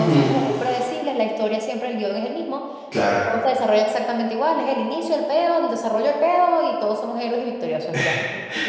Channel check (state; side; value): identical; both; correlation 1.00